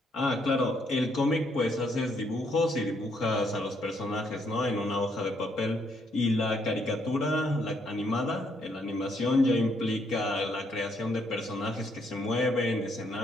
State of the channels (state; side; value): normal; both; correlation 0.72